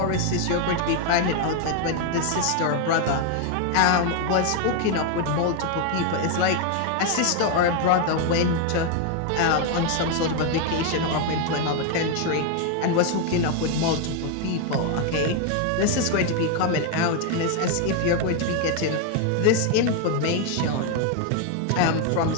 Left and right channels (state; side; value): different; both; correlation 0.01